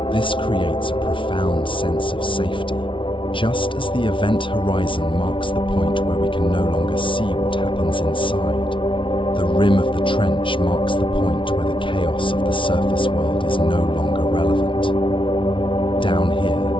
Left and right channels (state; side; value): late; right; 0.25 ms